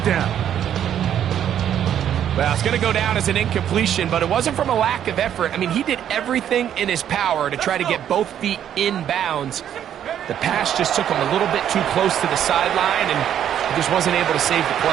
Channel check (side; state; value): left; quieter; 10.0 dB